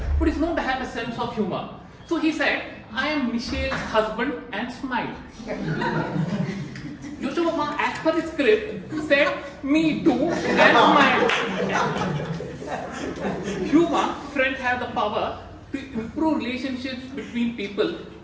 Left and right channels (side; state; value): both; identical; correlation 1.00